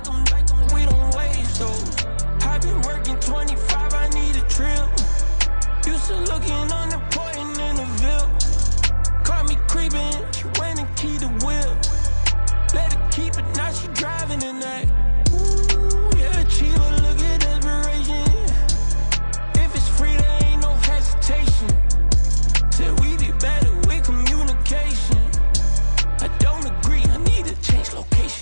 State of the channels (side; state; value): both; inverted; correlation -1.00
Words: we don't waste, though. I've been working 25, I need a trip. Used to looking unimportant in the creeping. She went and keyed the whip. Let her keep it, now she driving in that. Ooh, yeah, Chiva, look at desperation. If it's free, there ain't no hesitation. Said we be better with communication. I don't agree, I need to change